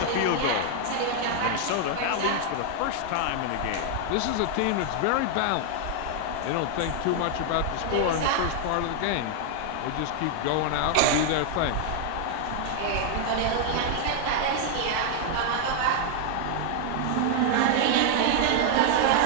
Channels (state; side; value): different; both; correlation 0.00